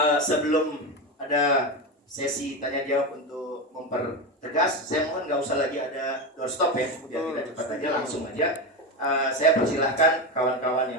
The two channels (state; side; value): normal; both; correlation 0.17